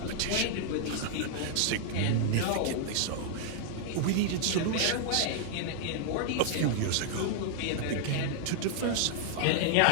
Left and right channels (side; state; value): both; different; correlation -0.01